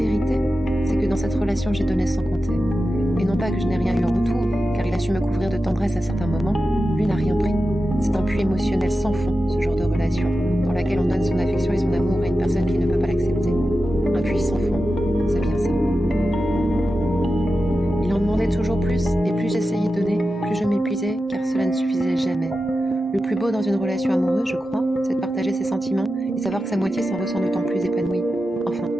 c'est que dans cette relation j'ai donné sans compter. Et non pas que je n'ai rien eu en retour, car il a su me couvrir de tendresse à certains moments, lui n'a rien pris. C'est un puits émotionnel sans fond, ce genre de relation, dans laquelle on donne son affection et son amour à une personne qui ne peut pas l'accepter. Un puits sans fond, c'est bien ça. Il en demandait toujours plus, et plus j'essayais de donner, plus je m'épuisais, car cela ne suffisait jamais. Le plus beau dans une relation amoureuse, je crois, c'est de partager ses sentiments et savoir que sa moitié s'en ressent d'autant plus épanouie. Enfin,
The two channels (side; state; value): both; normal; correlation 0.92